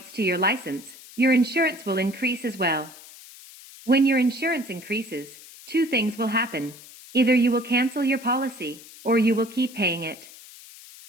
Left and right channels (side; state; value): left; noise; hiss, 19 dB below the sound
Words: to your license, your insurance will increase as well. When your insurance increases, 2 things will happen. Either you will cancel your policy, or you will keep paying it.